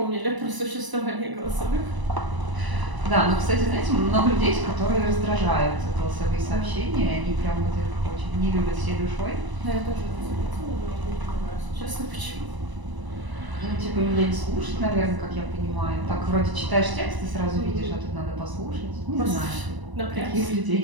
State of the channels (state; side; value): late; left; 1.0 ms